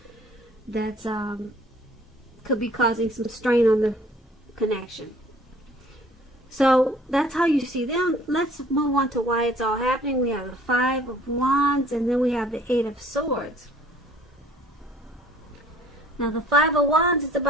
that's could be causing some strain on the connection. So that's how you see them. Let's move on to why it's all happening. We have the Five of Wands, and then we have the Eight of Swords. Now the Five of Wands, it's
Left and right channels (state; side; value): normal; both; correlation 0.55